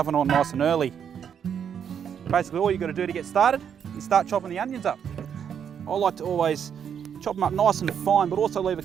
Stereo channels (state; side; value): quieter; left; 8.1 dB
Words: on nice and early. Basically all you've got to do to get started is start chopping the onions up. I like to always chop them up nice and fine, but also leave a